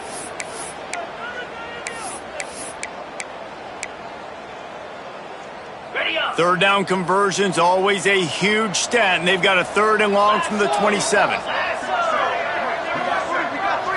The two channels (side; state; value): both; identical; correlation 1.00